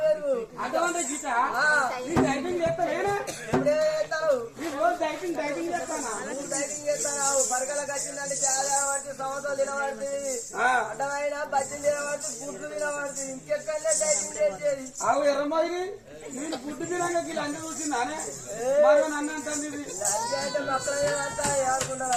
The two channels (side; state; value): both; identical; correlation 1.00